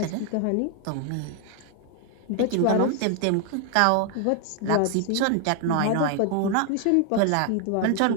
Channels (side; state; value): both; different; correlation 0.00